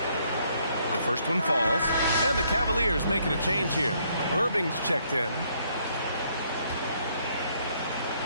The first one falls, and the Cavaliers making a change here. Irving's checked in.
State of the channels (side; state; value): both; inverted; correlation -0.69